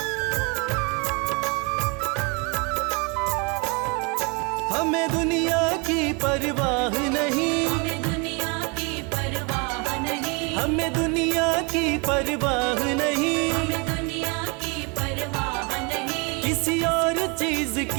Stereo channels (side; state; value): left; quieter; 30.8 dB